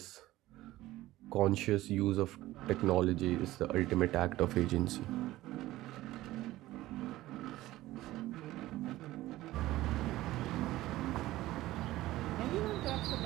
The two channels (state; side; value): quieter; left; 16.4 dB